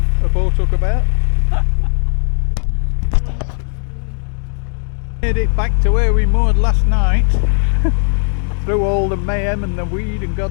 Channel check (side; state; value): right; silent; 61 dB below the other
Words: boat hook about. Made it back to where we moored last night through all the mayhem and the weed and